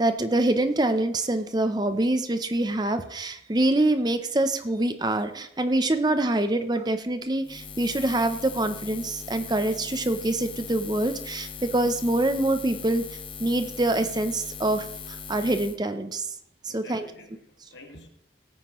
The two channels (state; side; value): normal; both; correlation 0.67